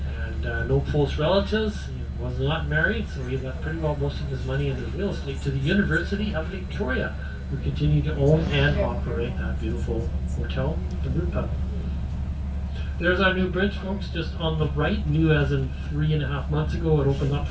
and no close relatives. He was not married, so he left pretty well most of his money into real estate to the University of Victoria, who continue to own and operate that beautiful hotel and brew pub. There's our new bridge, folks, just on the right, new as in 3.5 months ago. It opened up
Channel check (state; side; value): identical; both; correlation 1.00